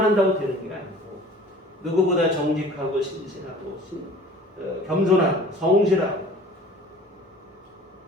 한다고 되는 게 아니고 누구보다 정직하고 신실하고 겸손하고 성실하고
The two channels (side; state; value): both; normal; correlation 0.46